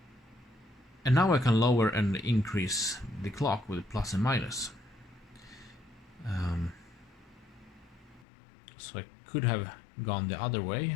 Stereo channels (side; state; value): right; drops out; at 8.2 s